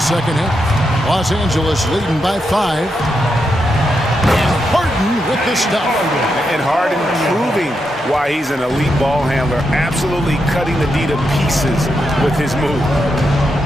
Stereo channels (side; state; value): both; normal; correlation 0.84